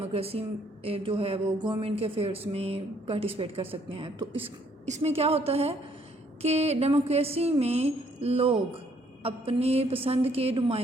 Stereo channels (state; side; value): normal; both; correlation 0.66